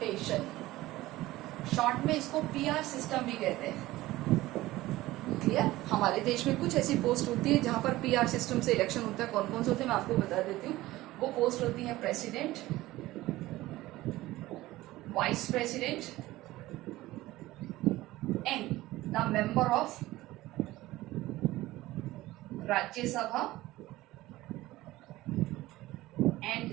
Short में इसको PR सिस्टम भी कहते हैं. क्लियर. हमारे देश में कुछ ऐसी पोस्ट होती है जहां पर PR सिस्टम से इलेक्शन होता है. कौन कौन से होते हैं मैं आपको बता देती हूँ. वो पोस्ट होती है president, vice president and the member of Rajya Sabha and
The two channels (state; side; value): quieter; left; 17.4 dB